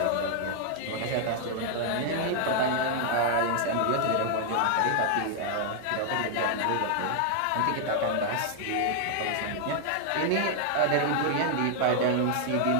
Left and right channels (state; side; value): different; both; correlation 0.00